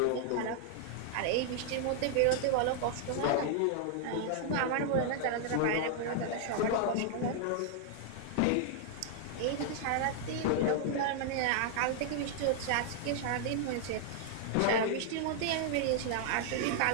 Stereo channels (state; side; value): different; both; correlation -0.01